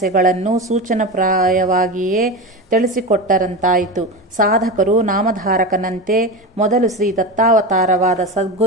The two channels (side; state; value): both; normal; correlation 0.23